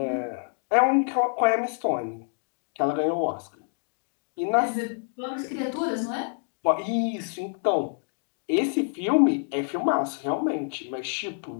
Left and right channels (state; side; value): silent; right; 57 dB below the other